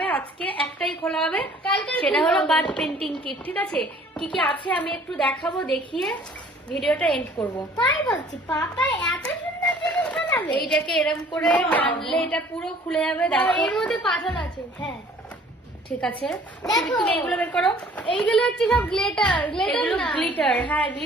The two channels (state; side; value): normal; both; correlation 0.54